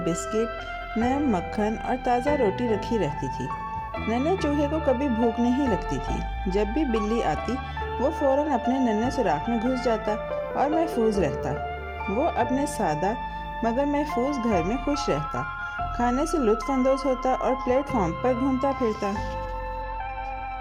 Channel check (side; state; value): both; identical; correlation 1.00